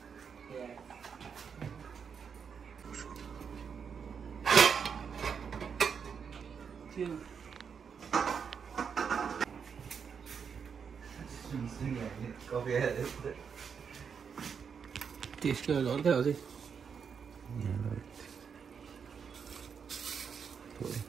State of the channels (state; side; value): quieter; left; 6.6 dB